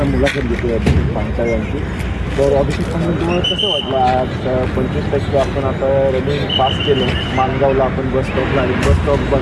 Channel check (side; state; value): both; identical; correlation 1.00